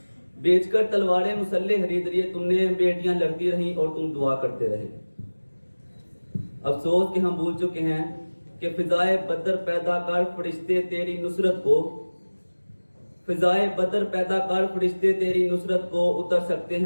बेचकर तलवारें मुसल्ले खरीद लिए तुमने, बेटियां लड़ती रहीं और तुम दुआ करते रहे। अफसोस कि हम भूल चुके हैं कि फिजाए बदर पैदा कर फरिश्ते तेरी नुसरत को, फिजाए बदर पैदा कर फरिश्ते तेरी नुसरत को, उतर सकते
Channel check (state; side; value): inverted; both; correlation -1.00